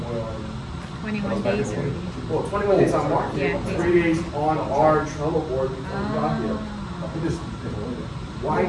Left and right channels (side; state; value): both; identical; correlation 1.00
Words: 21 days already. Well, 21 days on market. Yeah. 3 days on our Trello board before we got here. Why